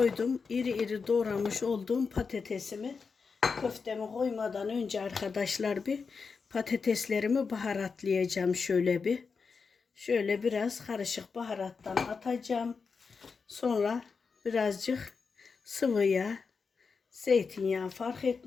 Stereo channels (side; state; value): right; quieter; 5.1 dB